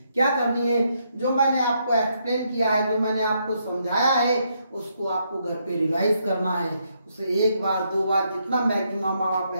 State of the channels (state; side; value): inverted; both; correlation -0.76